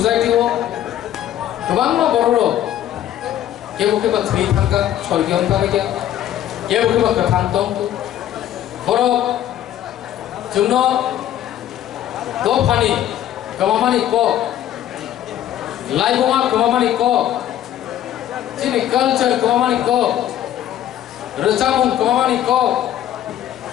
गोबां बर'र केबो केबो थै थांगा स्वर्गीय थांगा केबो केबो गोथां दं बर' जोंनो दफानि गोबांमानि क लाइबोमा गोबांमानि क जोंनि कालचार गोबांमानि क रोजाबुं गोबांमानि क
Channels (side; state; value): right; quieter; 11.8 dB